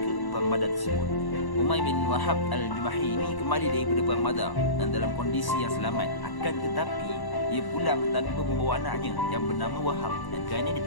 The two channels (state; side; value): late; right; 1.1 ms